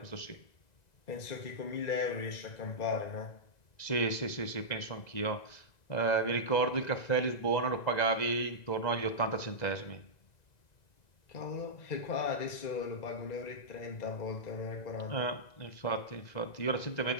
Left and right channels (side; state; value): right; late; 1.9 ms